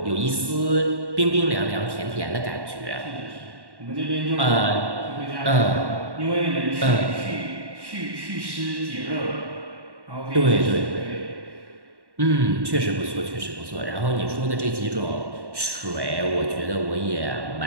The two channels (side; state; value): left; late; 1.1 ms